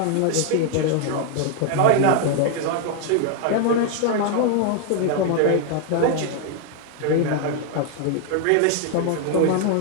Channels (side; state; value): both; different; correlation 0.00